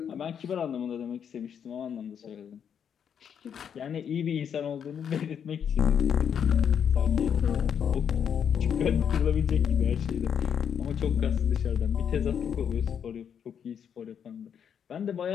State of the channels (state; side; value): quieter; right; 8.0 dB